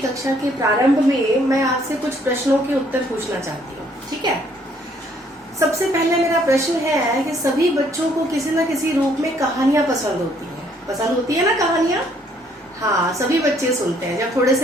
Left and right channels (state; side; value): normal; both; correlation 0.65